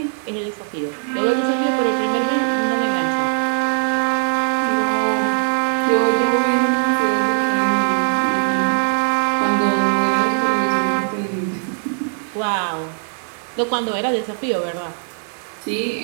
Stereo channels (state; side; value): silent; left; digital silence